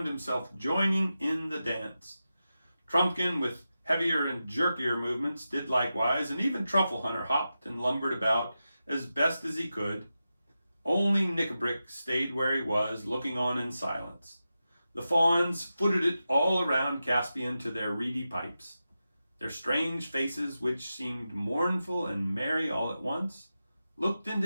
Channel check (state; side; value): inverted; both; correlation -0.91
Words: himself joining in the dance. Trumpkin, with heavier and jerkier movements, did likewise, and even Truffle Hunter hopped and lumbered about as best as he could. Only Nickabrick stayed where he was, looking on in silence. The fawns footed it all around Caspian to their reedy pipes. Their strange faces, which seemed mournful and merry all at once, looked